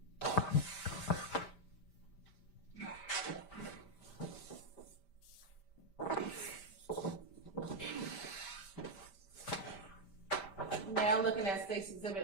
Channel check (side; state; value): right; late; 5.1 ms